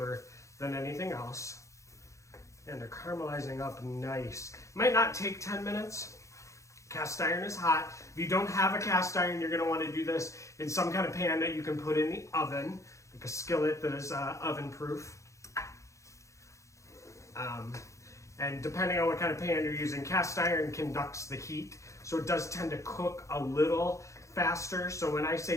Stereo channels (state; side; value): late; right; 0.15 ms